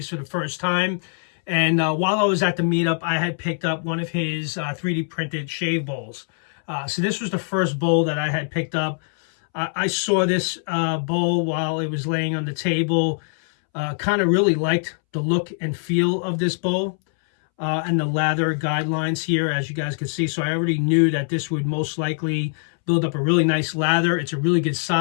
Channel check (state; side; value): silent; right; 64 dB below the other